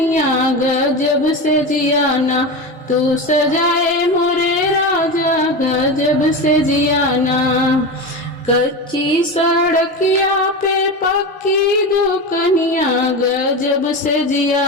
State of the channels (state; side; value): normal; both; correlation 0.22